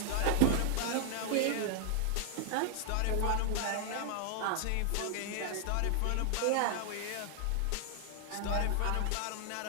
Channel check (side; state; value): both; different; correlation 0.00